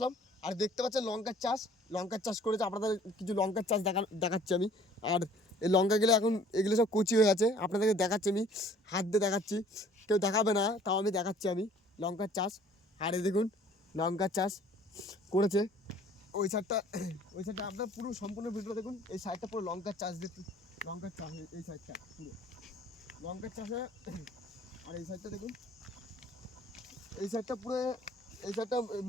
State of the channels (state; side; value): normal; both; correlation 0.54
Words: আর দেখতে পাচ্ছেন লঙ্কার চাষ করেছে। আপনাদের কিছু লঙ্কার চাষ দেখাচ্ছি আমি। আর এই লঙ্কাগুলো এখন এগুলো সব কচি হয়ে আছে, আপনাদেরকে দেখাচ্ছি আমি, হাত দিয়ে দেখাচ্ছি। কেউ দেখাবে না, তাও আমি দেখাচ্ছি আমি লঙ্কার চাষ। আর এই দেখুন লঙ্কার চাষ করেছে। ওই সাইডটা আপনার পুরো সম্পূর্ণ ভিডিও দেখুন। এই সাইডটা পুরো লঙ্কার চাষ দিয়ে, লঙ্কার চাষ এই সাইডটা পুরো লঙ্কার চাষে। আর এই সাইডটা দেখুন, এই সাইডটা পুরো, এই সাইডটা